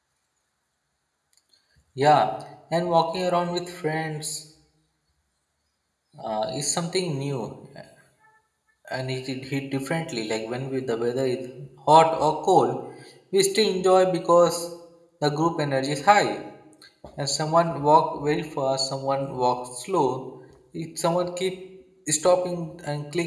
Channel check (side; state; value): both; identical; correlation 1.00